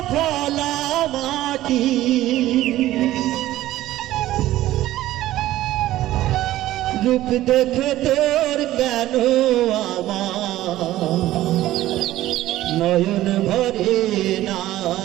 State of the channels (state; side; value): quieter; left; 14.9 dB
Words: ফলা মাটি রূপ দেখে তোর কেন আমার নয়ন ভরে না